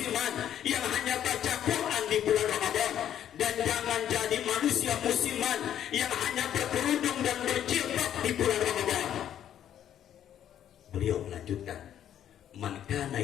yang hanya baca Quran di bulan Ramadan. Dan jangan jadi manusia musiman yang hanya berkerudung dan berjilbab di bulan Ramadan. Beliau melanjutkan, man kana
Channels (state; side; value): quieter; right; 10.4 dB